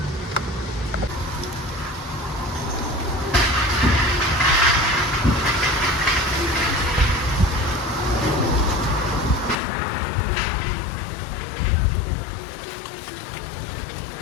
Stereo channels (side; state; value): right; drops out; at 9.6 s